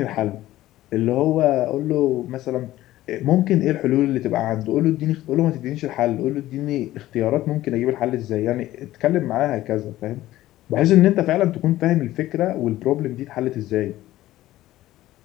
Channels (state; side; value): quieter; right; 15.3 dB